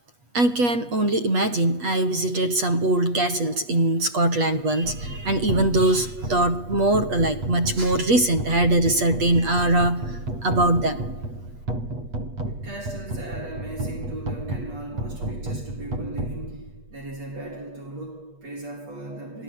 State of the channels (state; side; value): late; left; 8.3 ms